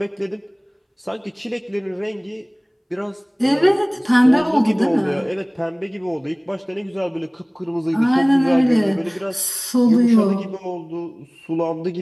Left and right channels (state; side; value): identical; both; correlation 1.00